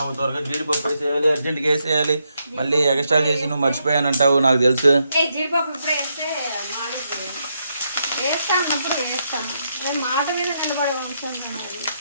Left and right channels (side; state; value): both; inverted; correlation -0.80